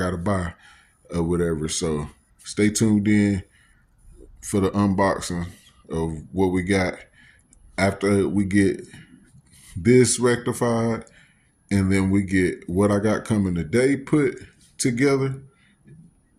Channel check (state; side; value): identical; both; correlation 1.00